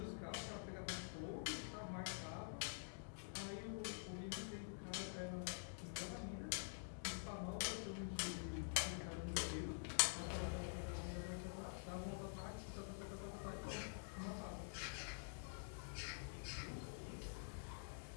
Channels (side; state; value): right; silent; digital silence